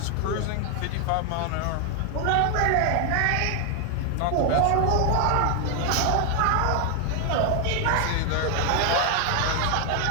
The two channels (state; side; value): different; both; correlation 0.00